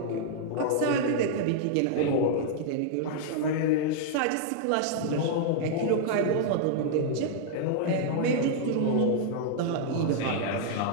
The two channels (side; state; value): both; different; correlation -0.01